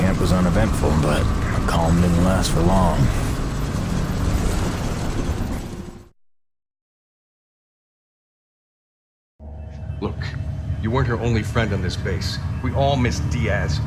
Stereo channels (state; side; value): identical; both; correlation 1.00